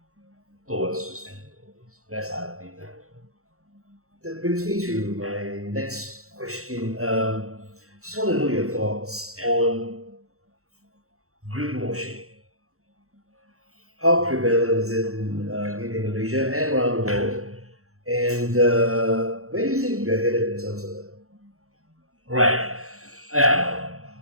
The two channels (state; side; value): late; left; 0.64 ms